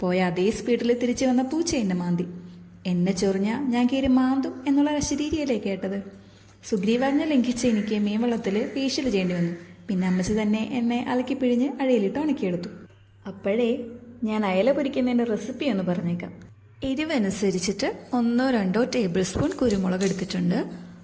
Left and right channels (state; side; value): identical; both; correlation 1.00